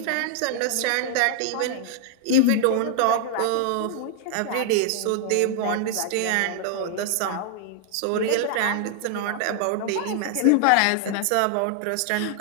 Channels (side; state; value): both; different; correlation 0.00